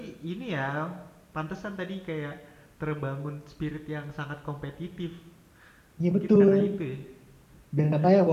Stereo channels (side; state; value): both; identical; correlation 1.00